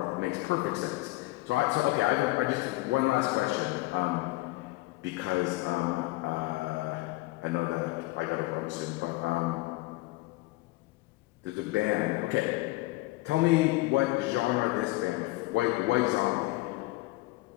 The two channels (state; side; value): quieter; right; 20.9 dB